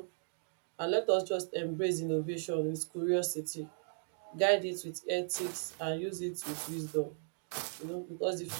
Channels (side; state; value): left; silent; digital silence